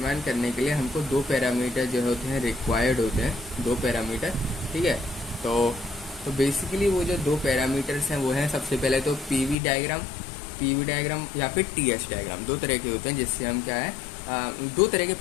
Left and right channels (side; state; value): right; drops out; at 9.6 s